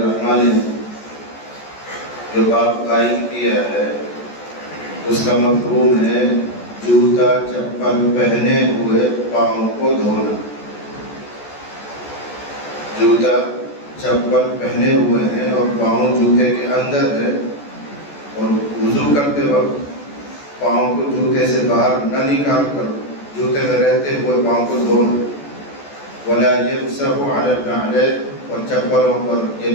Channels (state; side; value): late; right; 14 ms